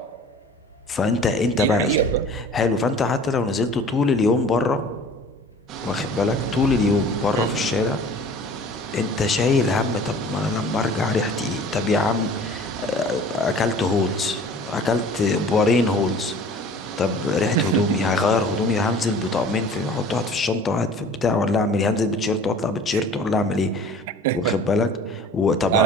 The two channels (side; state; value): both; normal; correlation 0.45